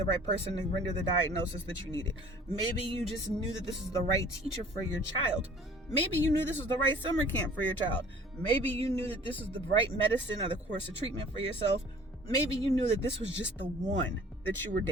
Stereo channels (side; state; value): both; normal; correlation 0.50